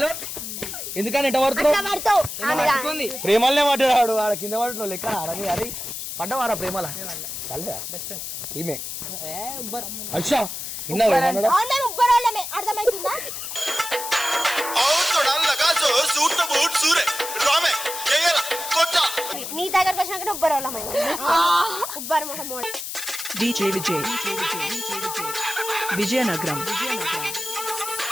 ఎందుకని ఎట్ట పడుతున్నావు ప్రేమలనే పడ్డాడు ఆడ కింద పడుతున్నావు లెక్క అరని అరే పడ్డవారా ప్రేమల ఈమె అచ్చా అర్థమవుతుందా నీ దగ్గరకు వచ్చినాక ఉబ్బరు మొహం DJ విజయనగరం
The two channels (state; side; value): noise; left; hiss, 7 dB below the sound